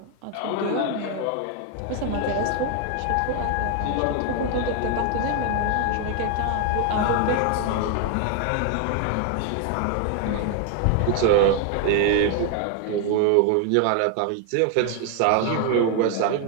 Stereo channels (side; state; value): both; different; correlation 0.00